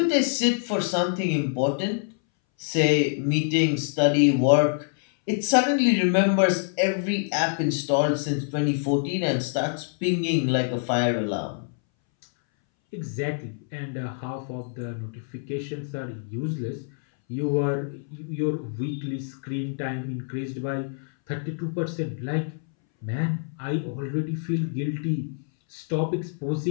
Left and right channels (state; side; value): silent; right; 61 dB below the other